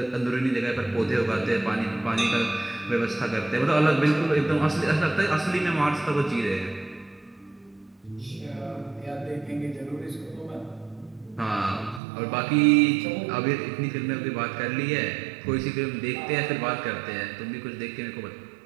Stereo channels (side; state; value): left; drops out; at 12.0 s